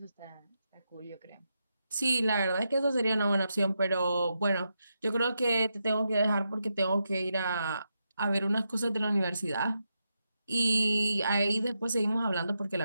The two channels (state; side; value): inverted; both; correlation -0.85